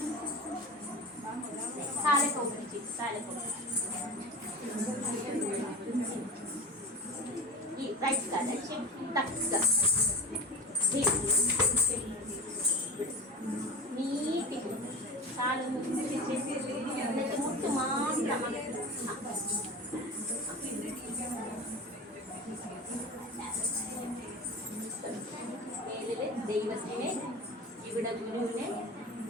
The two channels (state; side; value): normal; both; correlation 0.31